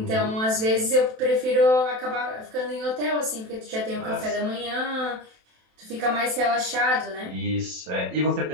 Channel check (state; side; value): late; left; 27 ms